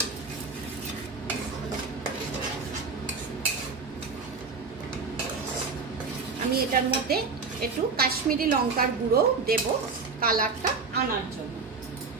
আমি এটার মধ্যে একটু কাশ্মীরি লঙ্কার গুঁড়ো দেব কালারটা আনার জন্য।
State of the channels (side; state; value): left; quieter; 4.6 dB